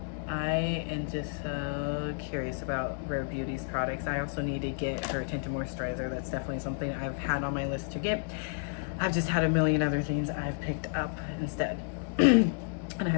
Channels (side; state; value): right; silent; 57 dB below the other